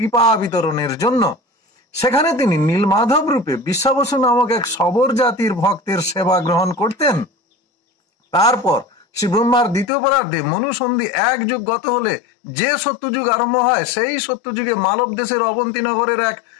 বিতরণের জন্য। সেখানে তিনি নীলমাধব রূপে বিশ্বাবসু নামক এক সবর জাতির ভক্তের সেবা গ্রহণ করতেন। তারপর শ্রী ব্রহ্মার দ্বিতীয় পরার্ধে মনুসন্ধি এক যুগ গত হলে যে সত্যযুগ আরম্ভ হয়, সেই সত্যযুগে মালব দেশের অবন্তীনগরের এক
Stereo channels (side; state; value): right; drops out; at 9.9 s